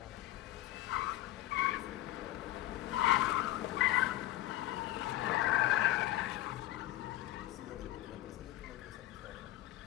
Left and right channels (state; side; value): quieter; right; 15.5 dB